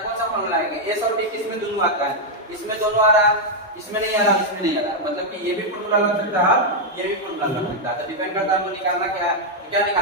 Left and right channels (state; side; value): normal; both; correlation -0.02